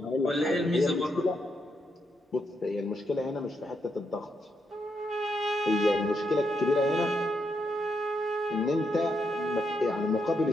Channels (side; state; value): both; normal; correlation 0.80